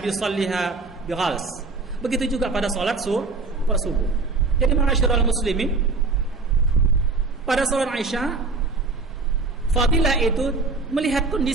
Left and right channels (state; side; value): quieter; left; 3.8 dB